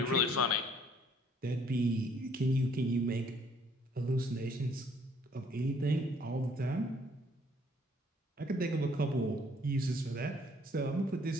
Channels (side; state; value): both; normal; correlation 0.62